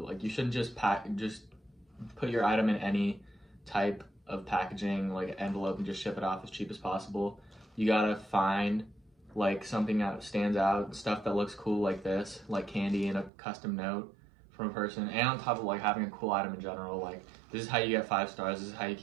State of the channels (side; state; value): left; drops out; at 13.3 s